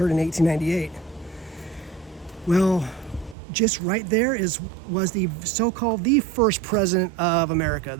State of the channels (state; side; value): drops out; left; at 3.4 s